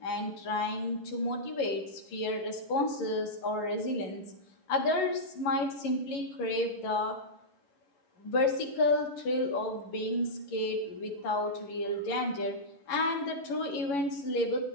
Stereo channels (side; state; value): right; late; 11 ms